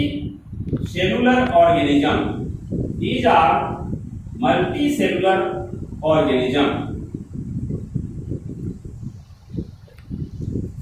organism. These are multicellular organism.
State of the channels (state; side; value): identical; both; correlation 1.00